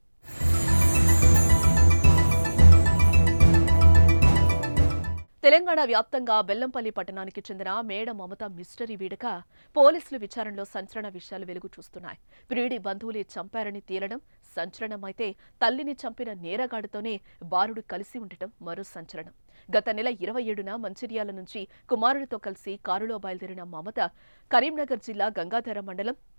తెలంగాణ వ్యాప్తంగా బెల్లంపల్లి పట్టణానికి చెందిన మేడ మమత మిస్టరీ వీడక పోలీసులు విచారణలో సంచలన విషయాలు వెలుగు చూస్తున్నాయి. ప్రియుడి బంధువులే చంపారని తేలడం సంచలనమైతే తల్లిని చంపిన నేరగాడితోనే బాలుడు కలిసి ఉండటం మరో సంచలనం. గత నెల 27న మంచిర్యాల నుంచి కుమారుడితో కలిసి కారులో బయలుదేరిన మమత కరీంనగర్ జిల్లా గంగాధర మండలం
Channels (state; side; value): inverted; both; correlation -1.00